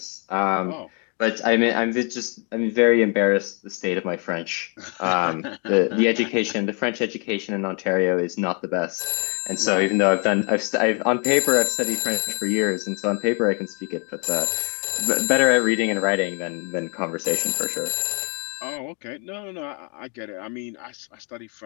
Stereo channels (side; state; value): right; quieter; 36.1 dB